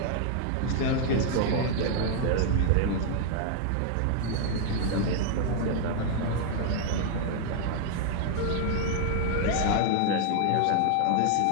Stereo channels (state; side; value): different; both; correlation 0.00